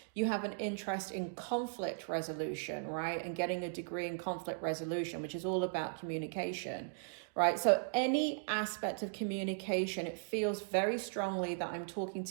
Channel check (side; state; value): left; silent; digital silence